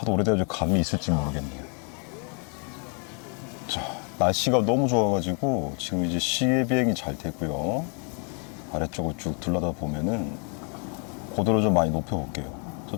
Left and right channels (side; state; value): right; quieter; 38.3 dB